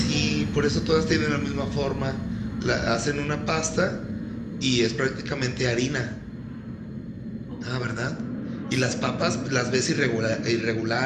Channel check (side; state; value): both; identical; correlation 1.00